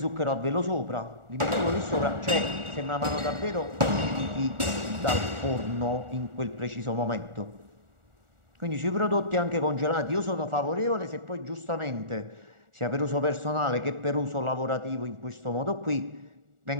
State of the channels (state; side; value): late; left; 1.4 ms